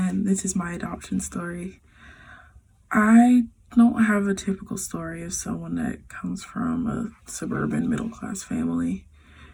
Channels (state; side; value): identical; both; correlation 1.00